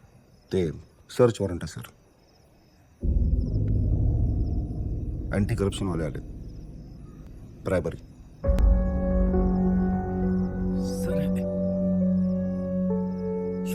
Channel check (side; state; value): both; identical; correlation 1.00